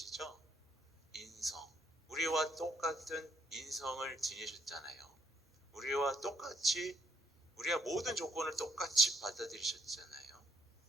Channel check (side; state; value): both; normal; correlation 0.70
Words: 인성. 우리와 똑같은 인성을 지니셨잖아요. 우리와 똑같이, 우리가 모든 조건을 똑같이 받아들이셨잖아요.